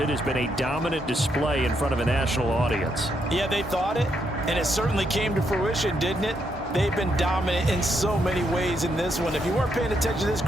has been a dominant display in front of a national audience. Yeah, they thought it, and it certainly came to fruition, didn't it? They've been dominant in so many ways in this one. If you weren't paying attention to this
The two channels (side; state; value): both; normal; correlation 0.78